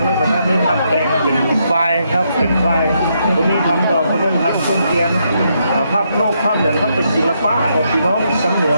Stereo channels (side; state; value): both; inverted; correlation -0.77